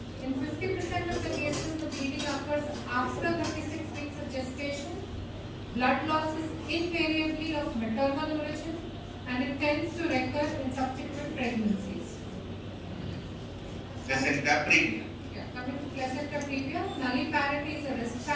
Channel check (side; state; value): both; identical; correlation 1.00